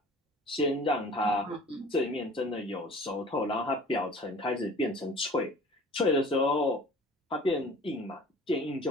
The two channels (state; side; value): normal; both; correlation 0.46